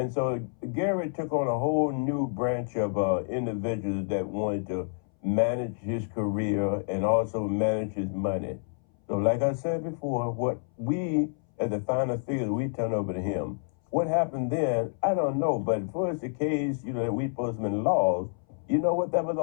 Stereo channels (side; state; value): right; silent; 59 dB below the other